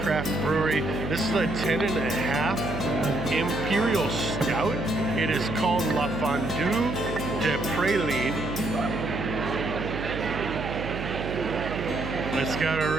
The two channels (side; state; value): right; noise; hum, 6 dB below the sound